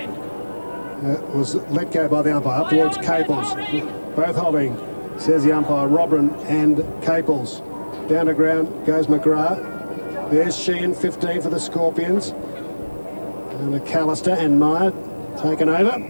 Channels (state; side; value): inverted; both; correlation -1.00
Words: Was let go by the umpire up towards Caples. Both holding, says the umpire, Robran and Caples. Down to ground goes McGrath. There's Sheehan, 15 for the Scorpions. And McAllister and Meyer taken over.